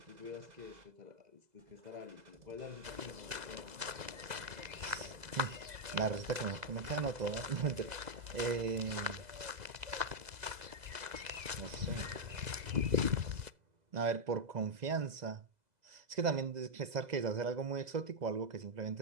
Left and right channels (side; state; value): left; late; 2.0 ms